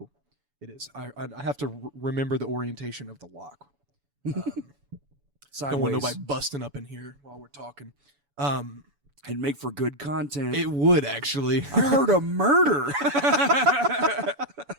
It is. I have to remember the orientation of the lock. Sideways. Don't want nobody busting up in here while we're talking. And make for good content. It would actually. I heard a murder.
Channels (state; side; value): late; left; 7.0 ms